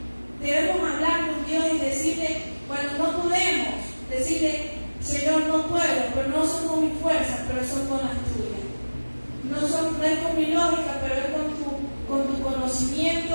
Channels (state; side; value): inverted; both; correlation -1.00